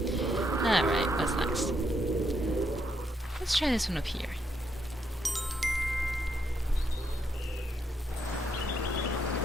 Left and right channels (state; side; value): normal; both; correlation 0.77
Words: Alright, what's next? Let's try this one up here.